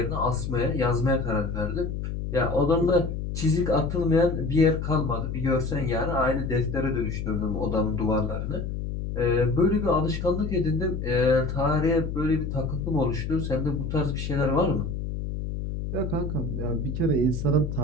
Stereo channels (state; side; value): noise; left; hum, 4 dB below the sound